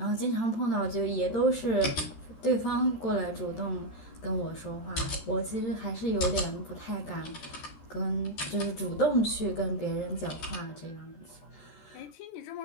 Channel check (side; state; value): right; late; 13 ms